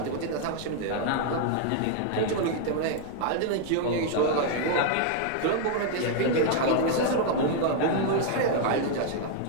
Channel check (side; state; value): both; different; correlation 0.00